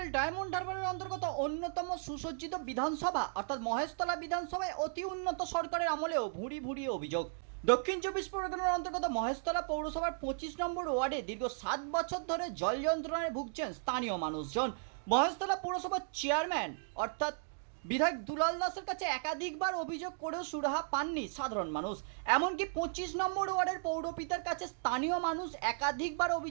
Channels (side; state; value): left; silent; digital silence